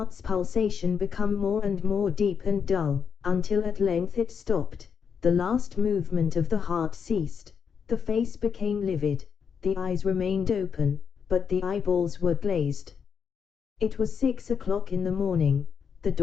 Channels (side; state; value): right; quieter; 6.8 dB